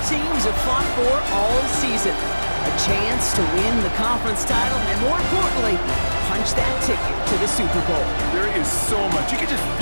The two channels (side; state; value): both; inverted; correlation -1.00